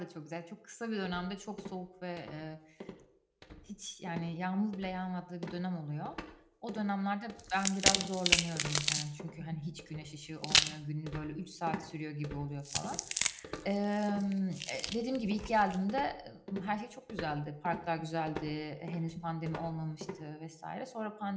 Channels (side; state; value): both; identical; correlation 1.00